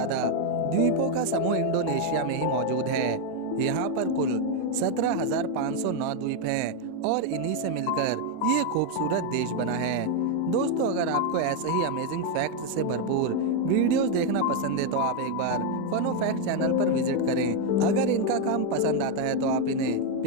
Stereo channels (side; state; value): both; different; correlation 0.01